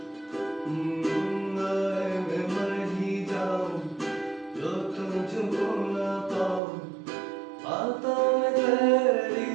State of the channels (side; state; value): left; drops out; at 6.6 s